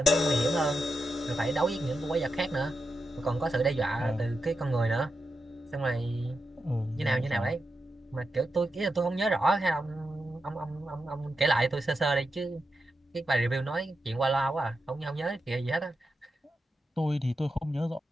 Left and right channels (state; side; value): normal; both; correlation 0.88